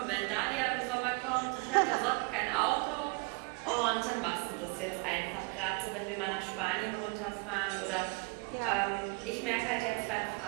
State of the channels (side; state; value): left; quieter; 30.5 dB